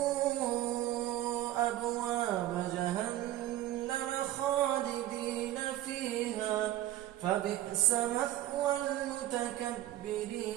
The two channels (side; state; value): left; quieter; 13.9 dB